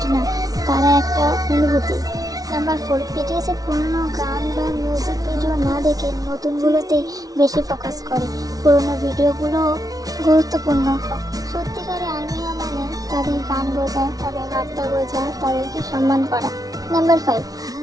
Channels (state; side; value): late; left; 0.18 ms